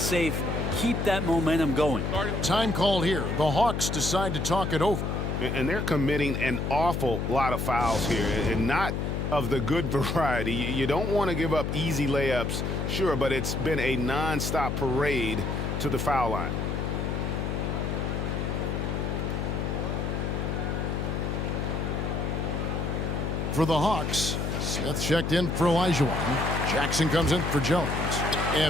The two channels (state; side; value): noise; left; hum, 1 dB below the sound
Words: Keep that momentum going. Time called here. The Hawks decide to talk it over. And they're committing an awful lot of fouls here, and not of the good variety. You don't want to give up easy layups, sure, but it's been a non-stop parade to the foul line. For the Hawks, Smith checked in for Olajuwon. Jackson comes in for Jones.